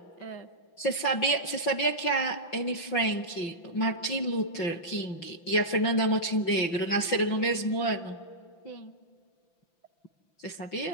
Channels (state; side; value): late; right; 5.9 ms